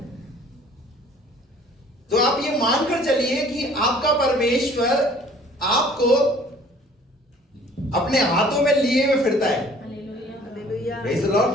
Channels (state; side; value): normal; both; correlation 0.53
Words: तो आप ये मानकर चलिए कि आपका परमेश्वर आपको अपने हाथों में लिए हुए फिरता है। Praise the Lord.